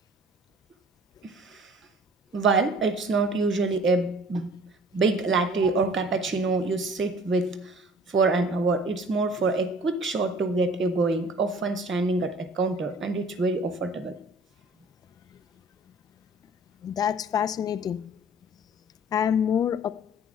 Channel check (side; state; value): both; normal; correlation 0.49